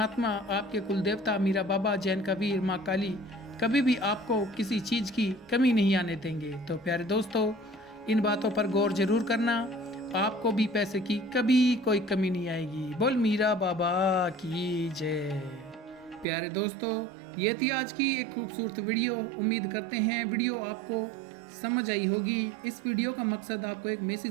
आपके कुल देवता मीरा बाबा, जैन कबीर, माँ काली कभी भी आपको किसी चीज़ की कमी नहीं आने देंगे। तो प्यारे दोस्तों, इन बातों पर गौर जरूर करना, आपको भी पैसे की कभी कोई कमी नहीं आएगी। बोल मीरा बाबा की जय। प्यारे दोस्तों, ये थी आज की एक खूबसूरत वीडियो। उम्मीद करते हैं वीडियो आपको समझ आई होगी। इस वीडियो का मकसद आपको एक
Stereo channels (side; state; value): left; drops out; at 16.2 s